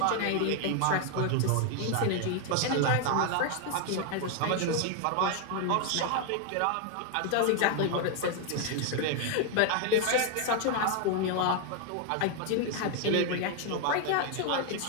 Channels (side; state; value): both; different; correlation 0.00